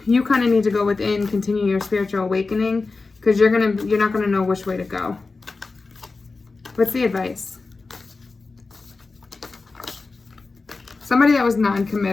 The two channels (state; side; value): quieter; right; 3.9 dB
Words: you kind of need to go within, continue your spiritual awakening, because you're not going to know which way to go. What's the advice? Somebody that was